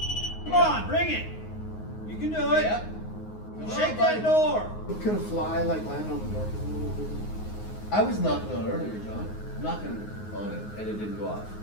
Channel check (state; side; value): late; right; 9.5 ms